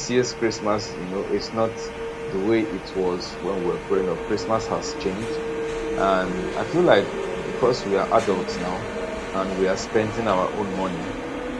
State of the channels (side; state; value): both; identical; correlation 1.00